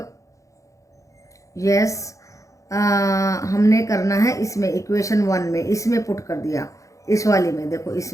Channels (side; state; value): right; late; 0.15 ms